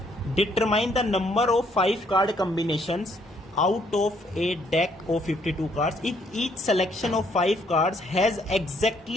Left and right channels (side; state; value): both; normal; correlation 0.68